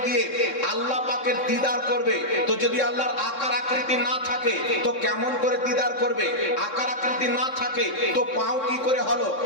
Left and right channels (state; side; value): late; right; 3.6 ms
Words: গিয়ে আল্লাহ পাকের দিদার করবে। তো যদি আল্লাহর আকার আকৃতি না থাকে তো কেমন করে দিদার করবে? আকার আকৃতি না থাকে তো পাও কি করে হলো?